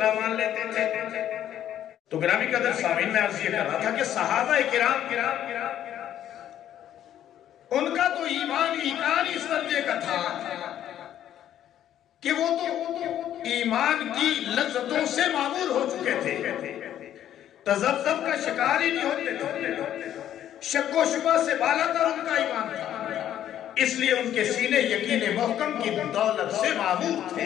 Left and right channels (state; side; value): quieter; right; 11.1 dB